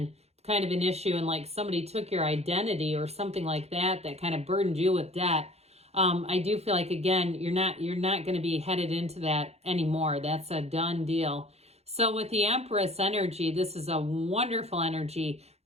kind of an issue, and like somebody took your identity or something like that, that kind of burdened you with debt, I do feel like, again, you're not going to be headed into that anymore. That's a done deal. So with the Empress energy, this is a wonderful energy.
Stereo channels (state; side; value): late; left; 0.31 ms